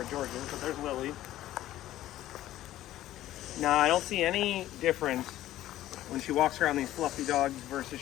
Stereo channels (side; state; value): right; quieter; 14.1 dB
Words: George is, but there's Lily. Now, I don't see any difference when she walks around these fluffy dogs versus